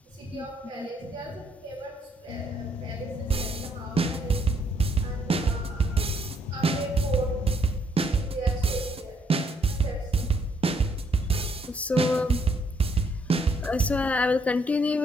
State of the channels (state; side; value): normal; both; correlation 0.70